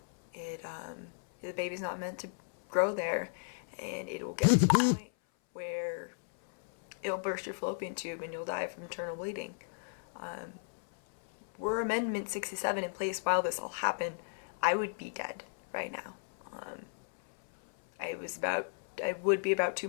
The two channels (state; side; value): silent; right; 55 dB below the other